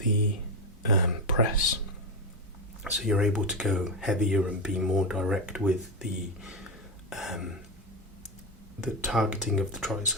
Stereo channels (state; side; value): normal; both; correlation 0.13